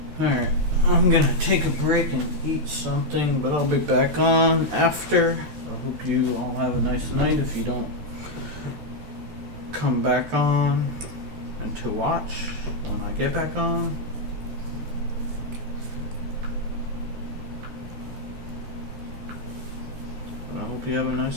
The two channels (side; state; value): left; late; 13 ms